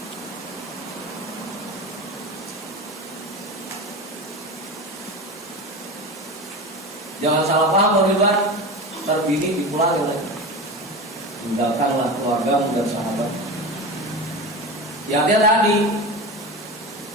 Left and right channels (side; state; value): both; normal; correlation 0.27